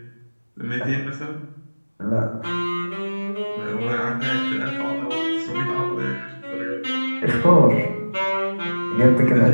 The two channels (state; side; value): inverted; both; correlation -1.00